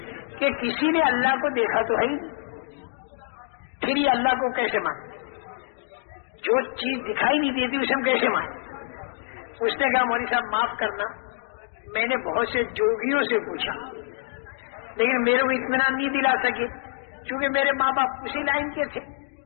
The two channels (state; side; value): silent; right; digital silence